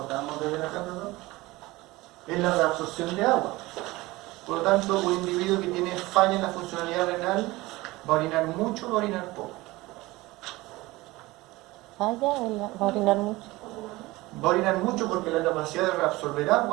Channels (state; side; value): quieter; left; 20.1 dB